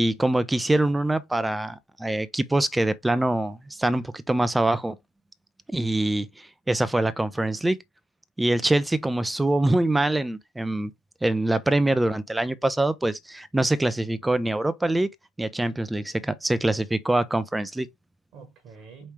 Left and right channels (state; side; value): normal; both; correlation 0.96